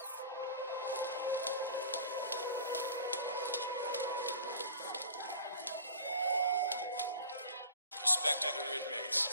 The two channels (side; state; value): both; inverted; correlation -0.42